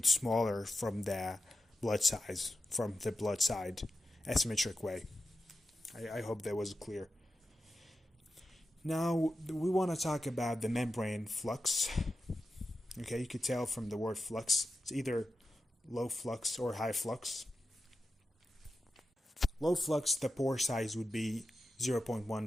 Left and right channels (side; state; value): both; normal; correlation 0.91